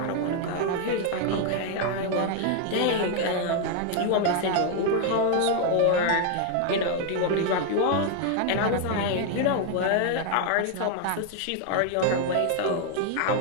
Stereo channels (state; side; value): different; both; correlation 0.00